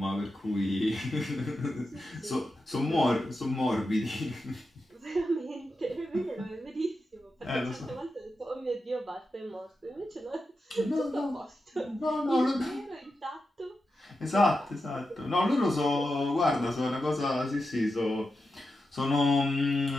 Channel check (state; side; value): normal; both; correlation 0.89